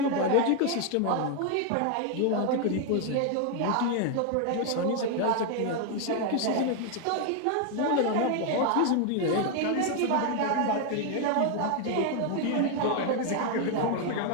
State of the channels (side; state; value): both; different; correlation 0.01